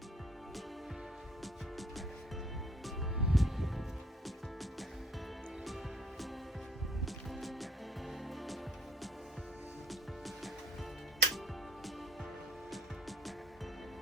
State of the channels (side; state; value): both; normal; correlation 0.57